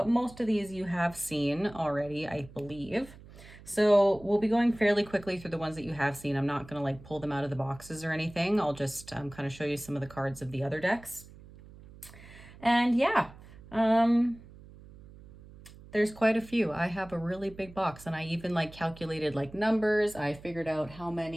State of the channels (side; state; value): right; noise; hum, 20 dB below the sound